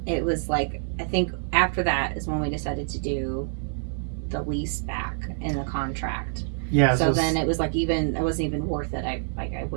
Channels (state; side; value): silent; left; 57 dB below the other